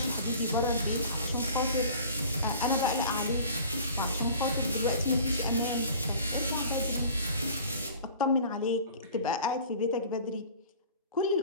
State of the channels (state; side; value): inverted; both; correlation -0.45